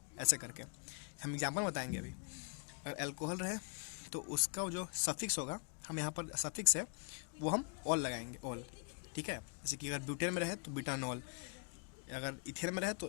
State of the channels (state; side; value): quieter; right; 40.0 dB